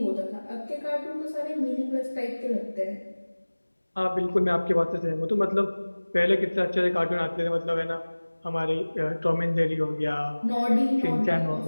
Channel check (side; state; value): both; inverted; correlation -1.00